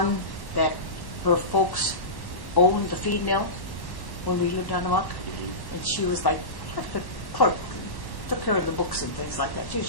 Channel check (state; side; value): late; right; 1.1 ms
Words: that her folks owned the feed mill when we lived on the muck. And she was like the clerk, took care of the books and things like that. She was